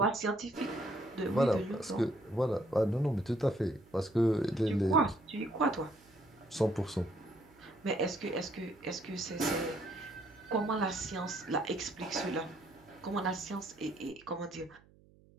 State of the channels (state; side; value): noise; right; hum, 27 dB below the sound